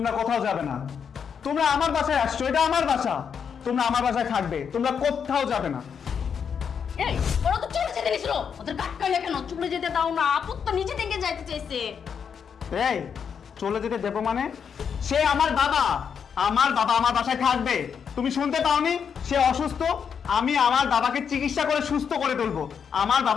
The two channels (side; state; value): right; quieter; 7.0 dB